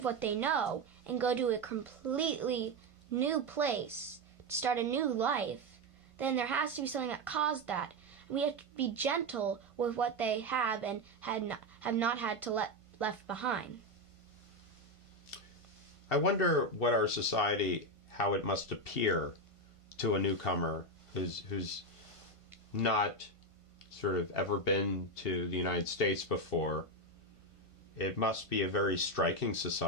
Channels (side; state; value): right; late; 1.5 ms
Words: what they know and go to a completely new place, to start a new life, then there has to be something that caused that. We have to be gentle with what they have and have not had to left behind. I wonder what our society, how it must appear to a newcomer who's not sort of ever been to the United States before. It must be a very striking